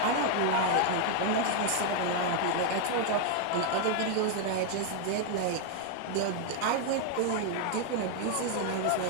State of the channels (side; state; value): both; different; correlation 0.00